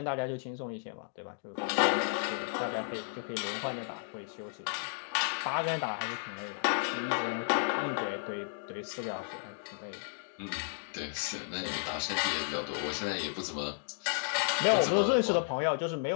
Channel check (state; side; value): silent; right; digital silence